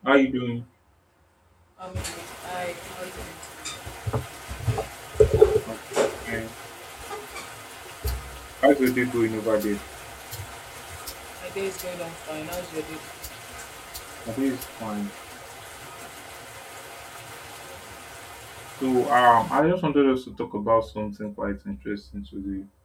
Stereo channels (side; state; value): both; identical; correlation 1.00